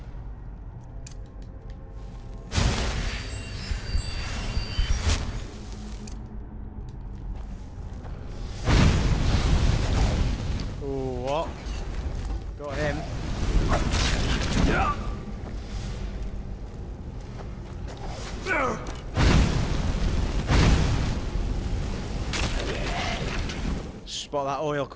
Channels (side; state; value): both; identical; correlation 1.00